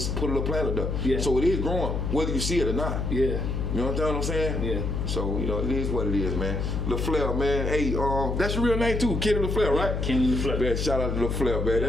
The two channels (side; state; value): left; noise; hum, 1 dB below the sound